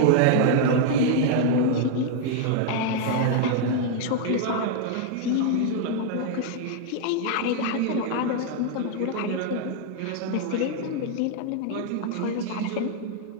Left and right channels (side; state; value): both; different; correlation 0.00